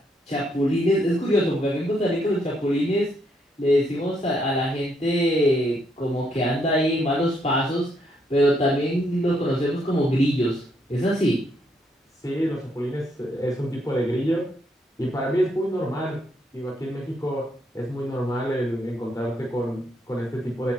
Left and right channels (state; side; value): normal; both; correlation 0.74